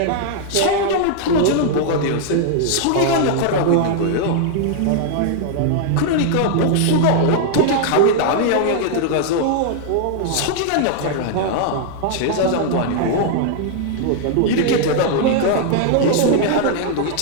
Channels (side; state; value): both; different; correlation 0.00